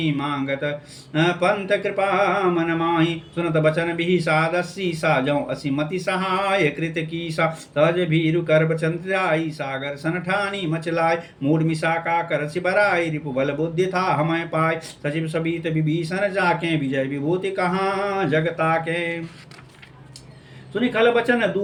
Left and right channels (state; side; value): identical; both; correlation 1.00